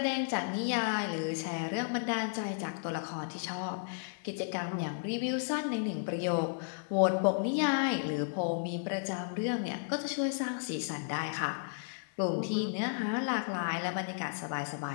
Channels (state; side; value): silent; right; digital silence